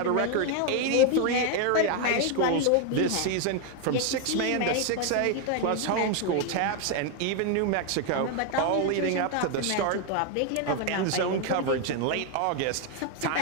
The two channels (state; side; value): different; both; correlation 0.01